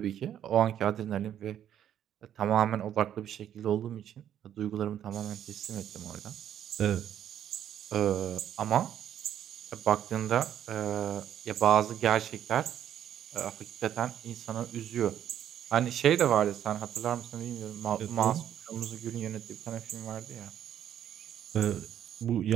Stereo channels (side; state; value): left; quieter; 10.3 dB